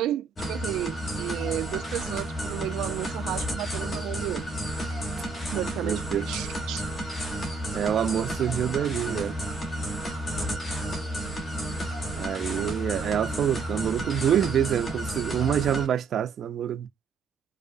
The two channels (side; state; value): left; quieter; 5.3 dB